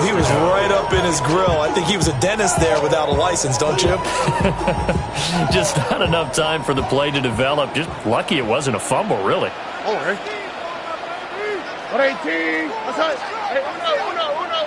He was right up in his grill. I think he was a dentist there without a license, don't you? Just not enough time for the play to develop. Just lucky it wasn't a fumble, really. All right. 118. That's it. Hey, uno.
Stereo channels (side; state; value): both; identical; correlation 1.00